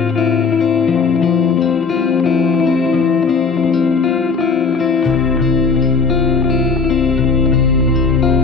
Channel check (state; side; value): quieter; right; 4.7 dB